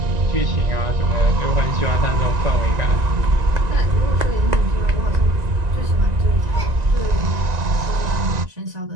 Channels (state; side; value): late; left; 1.9 ms